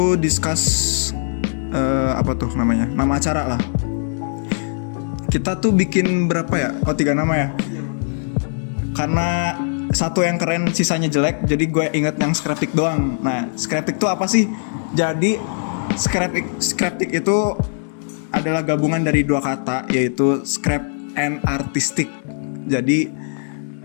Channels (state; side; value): silent; right; 64 dB below the other